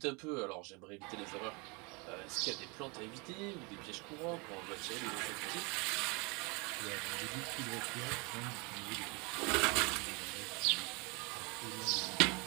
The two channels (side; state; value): left; quieter; 29.9 dB